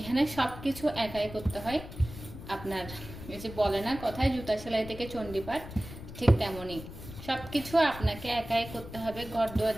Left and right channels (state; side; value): noise; left; rumble, 13 dB below the sound